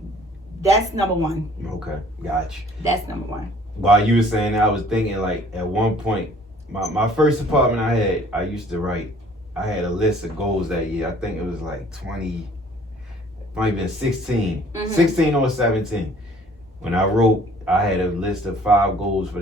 That's number one. Okay, gotcha. That's number one. While you were saying that, I was thinking like at one point, my first apartment I used to write. I had a list of goals that year. I think it was like 20, might have been 16, 16 or 17. When I wrote, I had a list of 5 goals for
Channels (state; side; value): normal; both; correlation 0.55